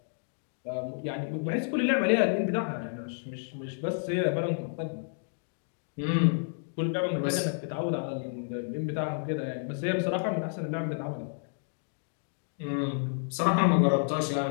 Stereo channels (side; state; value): right; silent; digital silence